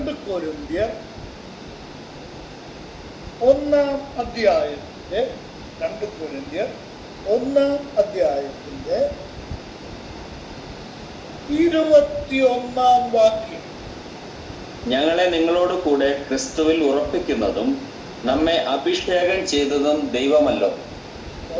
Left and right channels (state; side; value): identical; both; correlation 1.00